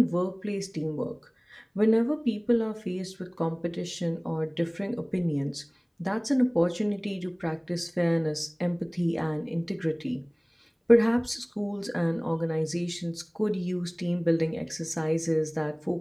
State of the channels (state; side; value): identical; both; correlation 1.00